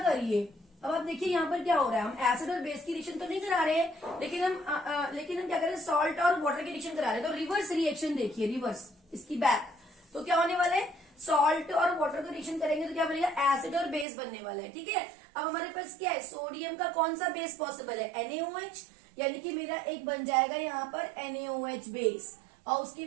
करिए, अब आप देखिए यहाँ पर क्या हो रहा है, हम एसिड और बेस की रिएक्शन तो नहीं करा रहे हैं, लेकिन हम क्या कर रहे हैं, सॉल्ट और वाटर की रिएक्शन करा रहे हैं। तो रिवर्स रिएक्शन देखिए, रिवर्स इसकी बैक, तो क्या होने वाला है, सॉल्ट और वाटर का रिएक्शन करेंगे तो क्या बनेगा, एसिड और बेस बनने वाला है। ठीक है, अब हमारे पास क्या है, सोडियम का कौन सा बेस पॉसिबल है, NaOH, यानी कि मेरा एक बन जाएगा यहाँ पर NaOH बेस। और उसके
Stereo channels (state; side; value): drops out; left; at 14.1 s